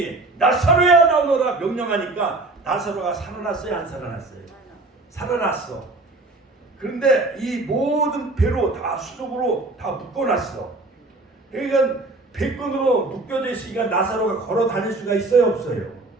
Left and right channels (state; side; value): quieter; left; 3.1 dB